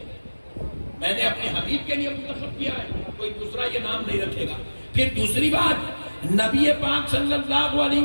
میں نے اپنے حبیب کے لیے منتخب کیا ہے، کوئی دوسرا یہ نام نہیں رکھے گا۔ پھر دوسری بات، نبی پاک صلی اللہ علیہ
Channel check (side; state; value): both; inverted; correlation -1.00